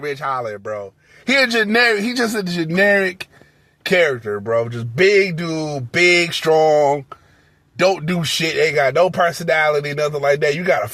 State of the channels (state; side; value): identical; both; correlation 1.00